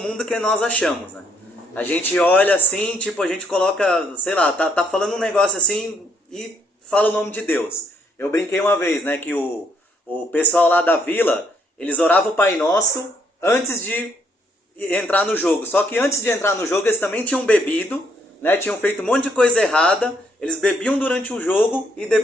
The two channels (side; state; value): both; normal; correlation 0.71